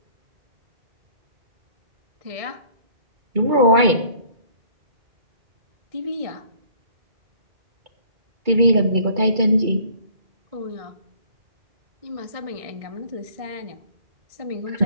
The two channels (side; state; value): left; late; 2.2 ms